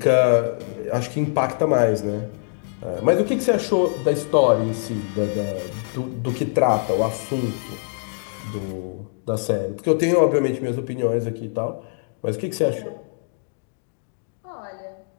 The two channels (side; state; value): right; silent; digital silence